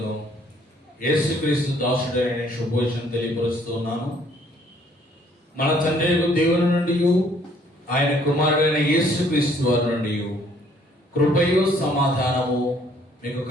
యేసుక్రీస్తు దాసుడైన శుభోచనం తెలియపరుస్తున్నాను. మన తండ్రి దేవుని నుండి ఆయన కుమారుడైన యేసుక్రీస్తు వారి నుండి కృపయు సమాధానము మీకు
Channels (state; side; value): normal; both; correlation 0.62